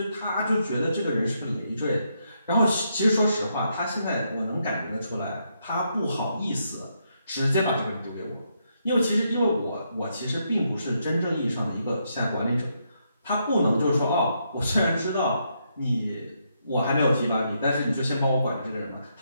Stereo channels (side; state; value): both; inverted; correlation -0.78